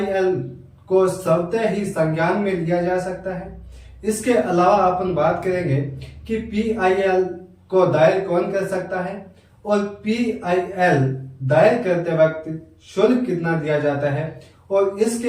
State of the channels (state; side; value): identical; both; correlation 1.00